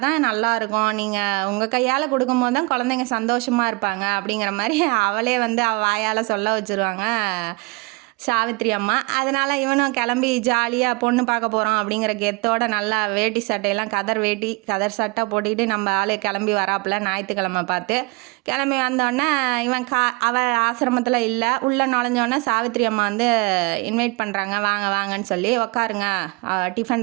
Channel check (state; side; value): quieter; left; 27.0 dB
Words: தான் நல்லாயிருக்கும், நீங்கள் உங்கள் கையால் கொடுக்கும்போது தான் குழந்தைங்க சந்தோஷமாக இருப்பாங்க அப்படிங்கிற மாதிரி அவளே வந்து அவள் வாயால் சொல்ல வச்சுருவாங்க சாவித்திரி அம்மா. அதனால் இவனும் கிளம்பி ஜாலியாக பொண்ணு பார்க்க போகிறோம் அப்படிங்கிற கெத்தோட நல்லா வேட்டி சட்டையெல்லாம் கதர் சட்டை போட்டுக்கிட்டு நம்ம ஆளு கிளம்பி வராப்புல ஞாயிற்றுக்கிழமை பார்த்து. கிளம்பி வந்தோடனே இவன் அவள் ஆசிரமத்தில் இல்லை. உள்ளே நுழைஞ்சோடனே சாவித்திரி அம்மா வந்து இன்வைட் பண்ணுறாங்க, வாங்க வாங்கன்னு சொல்லி. உட்காருங்க,